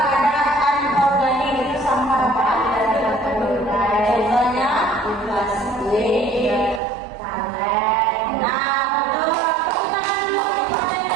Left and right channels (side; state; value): left; drops out; at 6.8 s